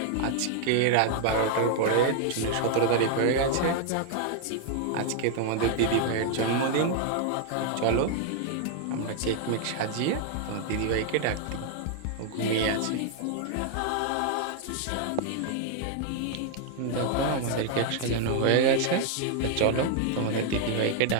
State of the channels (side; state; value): both; different; correlation 0.00